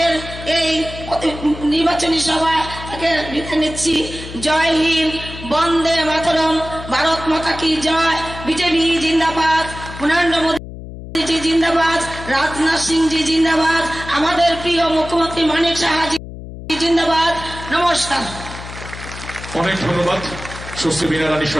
এই নির্বাচনী সভা থেকে বিদায় নিচ্ছি। জয় হিন্দ, বন্দে মাতরম, ভারত মাতা কি জয়, বিজেপি জিন্দাবাদ, নরেন্দ্র মোদী জি জিন্দাবাদ, রাজনাথ সিং জি জিন্দাবাদ, আমাদের প্রিয় মুখ্যমন্ত্রী মানিক সাহাজি জিন্দাবাদ। নমস্কার। অনেক ধন্যবাদ সুশ্রী বীণা রানী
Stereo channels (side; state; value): left; noise; hum, 12 dB below the sound